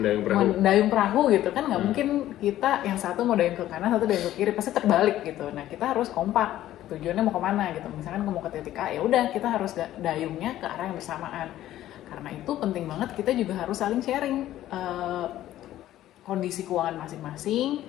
perahu gitu kan, nggak mungkin kita yang satu mau dayung ke kanan, satu dayung ke kiri, pasti terbalik gitu. Nah, kita harus kompak, tujuannya mau kemana gitu. Misalkan mau ke titik A, ya udah kita harus dayungnya ke arah yang bersamaan. Karena itu penting banget kita juga harus saling sharing kondisi keuangan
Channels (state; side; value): quieter; right; 13.5 dB